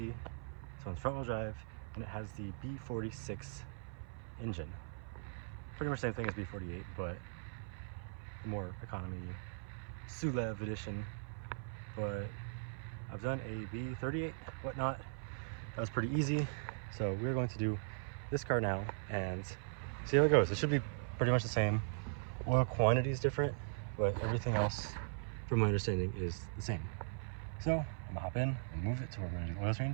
So it's front wheel drive and it has the B46 engine. Pretty much the same thing as B48, but the more economy SULEV edition. But I've done a B38 whatnot. That was pretty easy. So we're going to do this car now and see how it goes. It should be pretty much the same. Oil quantity is different, but everything else, from my understanding, is the same. So I'm gonna hop in and move it to where we're gonna do the oil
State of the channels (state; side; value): silent; left; 51 dB below the other